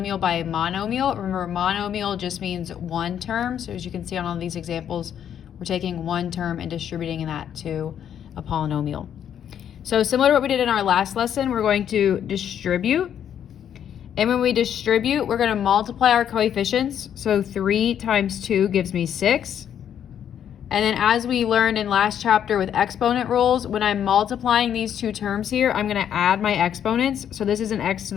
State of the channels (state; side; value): quieter; right; 9.3 dB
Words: by a monomial. Remember, monomial just means one term. So as you can see on all these examples, we're taking one term and distributing that to a polynomial. So similar to what we did in our last lesson, we're going to distribute. And when we distribute, we're going to multiply our coefficients. So 3 times 2 gives me 6. And then as we learned in last chapter with exponent rules, when I'm multiplying these two terms here, I'm going to add my exponents. So this is an x to